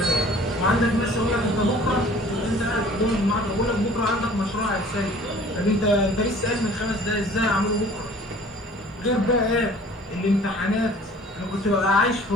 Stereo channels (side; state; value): both; normal; correlation 0.50